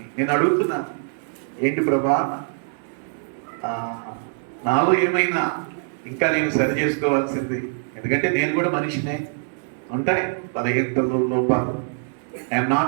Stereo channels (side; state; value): left; silent; 60 dB below the other